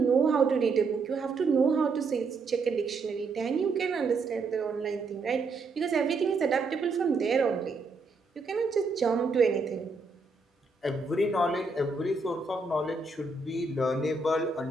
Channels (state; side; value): quieter; left; 3.9 dB